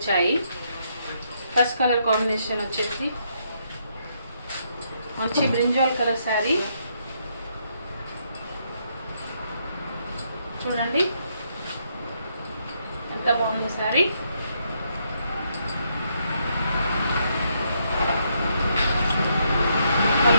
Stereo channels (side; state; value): both; inverted; correlation -0.75